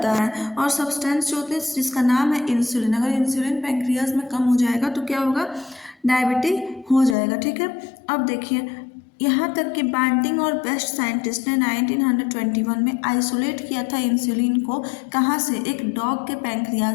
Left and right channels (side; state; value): right; drops out; at 7.2 s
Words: है और सब्सटेंस जो होते हैं जिसका नाम है इंसुलिन, अगर इंसुलिन पैंक्रियाज में कम हो जाएगा तो क्या होगा? डायबिटिक हो जाएगा। ठीक है, अब देखिए यहाँ तक कि बैंटिंग और बेस्ट साइंटिस्ट ने 1921 में आइसोलेट किया था इंसुलिन को। कहाँ से? एक डॉग के